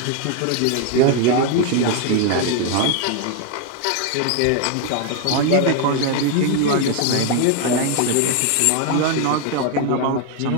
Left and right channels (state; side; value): different; both; correlation 0.01